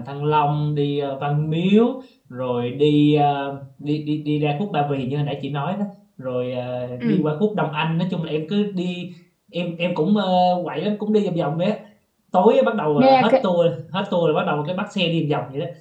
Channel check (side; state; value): both; identical; correlation 1.00